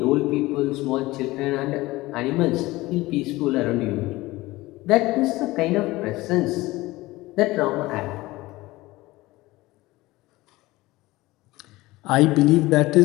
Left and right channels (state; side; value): quieter; right; 19.4 dB